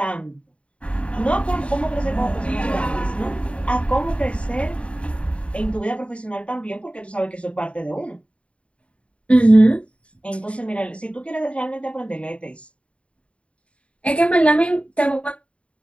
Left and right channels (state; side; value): late; right; 0.061 ms